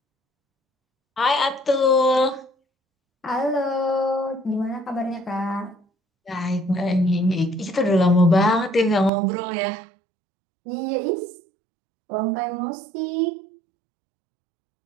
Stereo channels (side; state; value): left; drops out; at 9.1 s